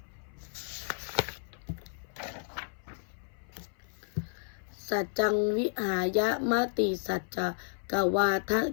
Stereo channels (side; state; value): right; silent; 56 dB below the other